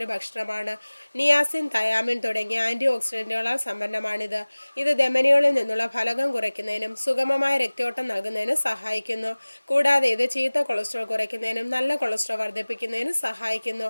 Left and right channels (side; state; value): both; inverted; correlation -1.00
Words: ഭക്ഷണമാണ്. നിയാസിൻ, തയാമിൻ തുടങ്ങിയ ആന്റി ഓക്സിഡന്റുകളാൽ സമ്പന്നമാണിത്. ഇത് ധമനികളിൽ നിന്നുള്ള ഫലകം കുറയ്ക്കുന്നതിനും സുഗമമായ രക്തയോട്ടം നൽകുന്നതിനും സഹായിക്കുന്നു. കൂടാതെ ഇത് ചീത്ത കൊളസ്ട്രോൾ കുറയ്ക്കുന്നതിനും നല്ല കൊളസ്ട്രോൾ വർദ്ധിപ്പിക്കുന്നതിനും സഹായിക്കുന്നു.